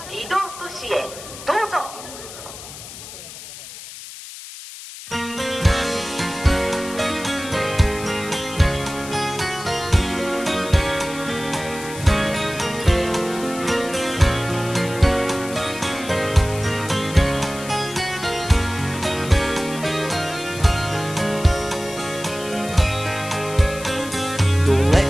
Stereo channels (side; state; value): left; noise; hiss, 13 dB below the sound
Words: 離島都市へどうぞ。